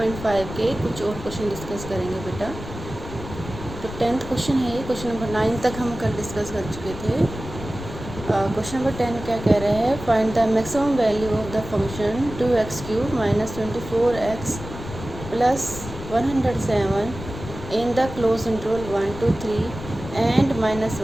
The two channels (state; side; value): noise; left; rumble, 11 dB below the sound